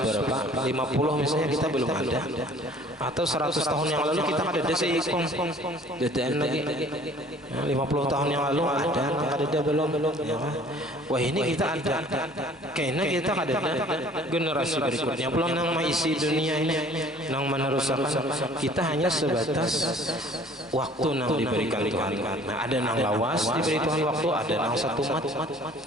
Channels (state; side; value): normal; both; correlation 0.52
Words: 50 misalnya, kita belum ada, atau 100 tahun yang lalu kita kada ada seikong DTN lagi, 50 tahun yang lalu ada, kada belum. Wah, ini kita ada, kayaknya kita kada ada. Generasi berikutnya belum nang mengisi dunia ini, nang meneruskan. Kita hanya sebatas waktu nang diberikan Tuhan. Nah, ada nang lawas diberi Tuhan waktu, ada nang satu mat,